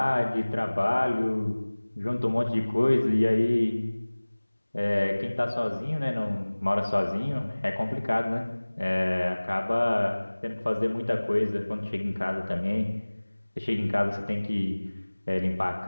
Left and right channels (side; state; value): both; inverted; correlation -1.00